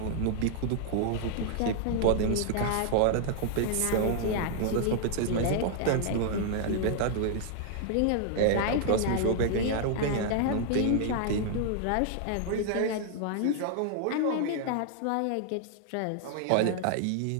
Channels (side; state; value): both; different; correlation 0.00